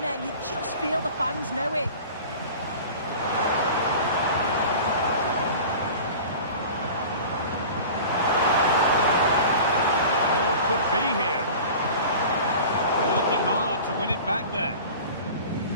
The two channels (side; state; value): both; inverted; correlation -0.38